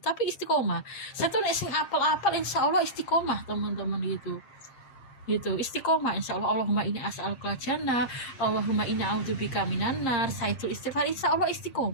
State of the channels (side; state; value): right; late; 7.5 ms